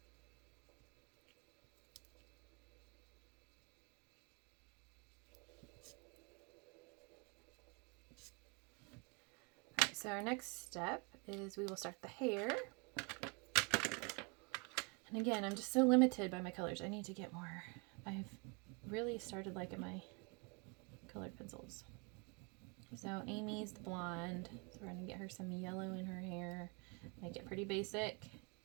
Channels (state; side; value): quieter; left; 32.6 dB